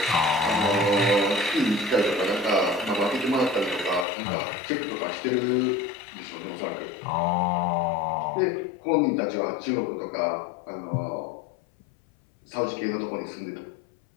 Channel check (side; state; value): right; drops out; at 4.0 s